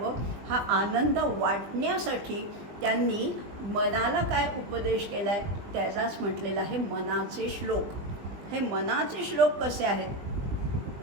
हा आनंद वाटण्यासाठी त्यांनी मनाला काय उपदेश केला आहे त्याचाच म्हटलेला आहे मनाचे श्लोक. हे मनाचे श्लोक कसे आहेत?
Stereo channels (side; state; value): left; late; 20 ms